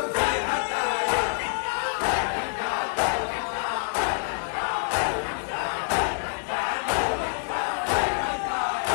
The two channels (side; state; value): right; silent; digital silence